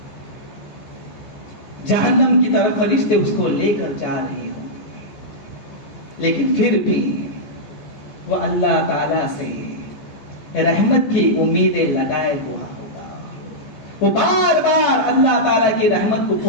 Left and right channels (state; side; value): late; right; 14 ms